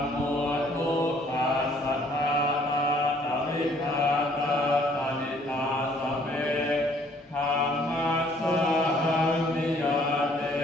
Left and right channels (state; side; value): normal; both; correlation 0.61